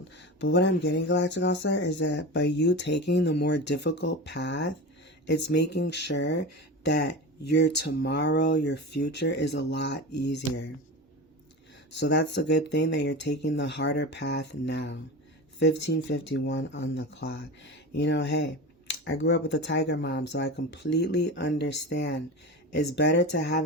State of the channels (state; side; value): normal; both; correlation 0.27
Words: But what I'm getting, Galactic All-Star, is that by you taking the more difficult path, it's making sure that your tomorrow, your future is a lot easier. So that's a good thing that you're taking the harder path now. 1551 on the clock. Hey, I grew up with a tiger mom, so I completely understand. It's better to have